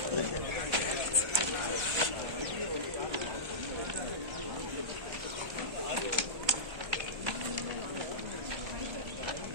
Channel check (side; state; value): left; late; 1.3 ms